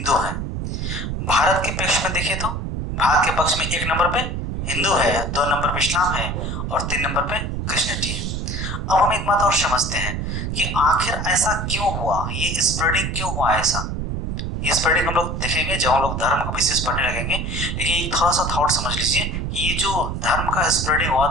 है। भारत के पक्ष में देखें तो भारत के पक्ष में एक नंबर पे हिंदू है, दो नंबर पे इस्लाम है, और तीन नंबर पे क्रिश्चियनिटी है। अब हम एक बात और समझते हैं कि आखिर ऐसा क्यों हुआ, ये स्प्रेडिंग क्यों हुआ ऐसा? ये स्प्रेडिंग हम लोग देखेंगे जब हम लोग धर्म को विशेष पढ़ने लगेंगे। लेकिन थोड़ा सा थॉट समझ लीजिए कि ये जो धर्म का स्प्रेडिंग हुआ,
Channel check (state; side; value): noise; right; rumble, 3 dB below the sound